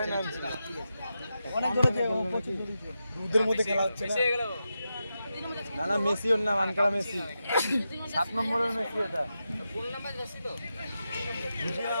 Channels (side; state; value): both; inverted; correlation -0.89